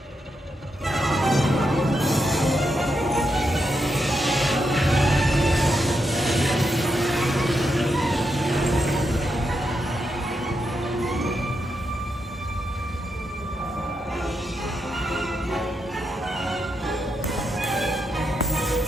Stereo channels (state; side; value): normal; both; correlation 0.83